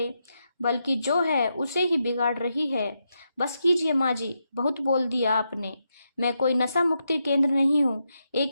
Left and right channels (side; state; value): both; inverted; correlation -0.84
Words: बल्कि जो है उसे ही बिगाड़ रही है। बस कीजिए माँ जी, बहुत बोल दिया आपने। मैं कोई नशा मुक्ति केंद्र नहीं हूँ,